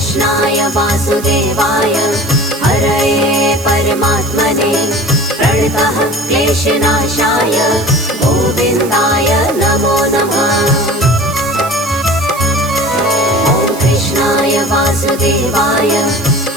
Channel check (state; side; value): noise; right; hiss, 14 dB below the sound